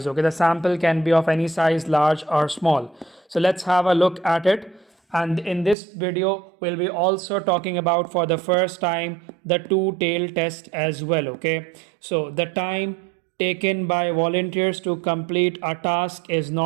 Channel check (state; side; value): drops out; left; at 5.8 s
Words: Okay, the sample can be of any size, large or small. So let's have a look at it. And in this video, we'll be also talking about for the first time the two-tailed test as well. Okay, so the time taken by volunteers to complete a task is